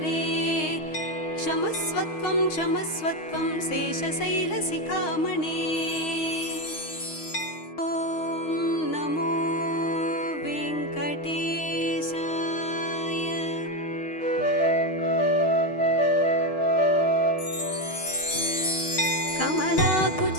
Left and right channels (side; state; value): right; late; 6.4 ms